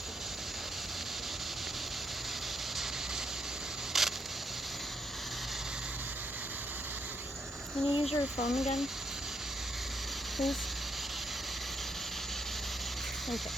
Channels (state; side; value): normal; both; correlation 0.77